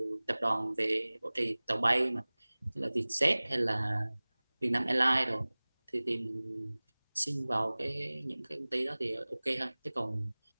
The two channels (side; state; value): both; inverted; correlation -1.00